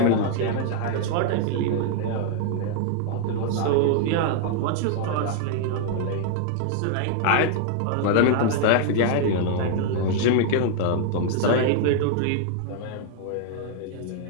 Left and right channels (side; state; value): both; different; correlation 0.00